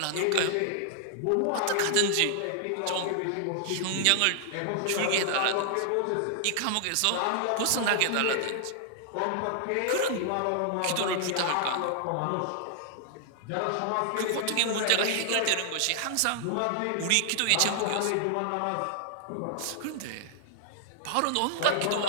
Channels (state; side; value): different; both; correlation -0.01